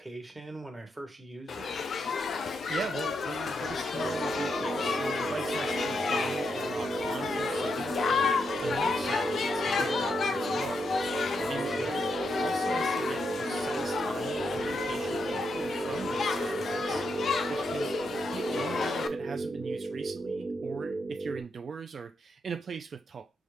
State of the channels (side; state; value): both; normal; correlation 0.82